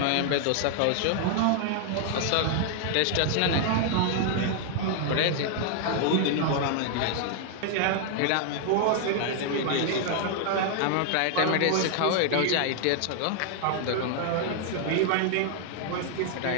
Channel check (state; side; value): different; both; correlation 0.00